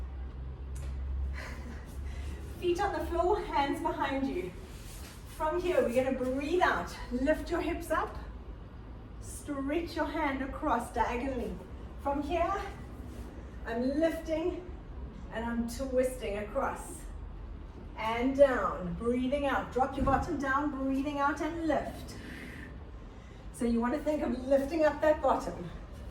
Feet on the floor, hands behind you. From here, we're going to breathe out. Lift your hips up. Stretch your hand across diagonally. From here, I'm lifting and I'm twisting across. And down, breathing out. Drop your bottom down, breathing out and lift. So you want to think of lifting up that bottom.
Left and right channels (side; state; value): both; identical; correlation 1.00